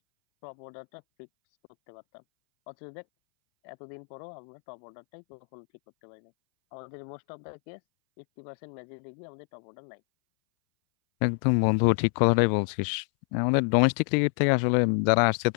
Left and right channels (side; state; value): right; silent; 60 dB below the other